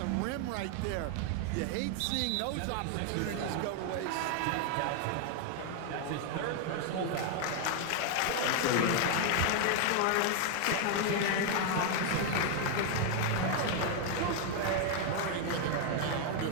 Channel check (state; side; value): different; both; correlation 0.00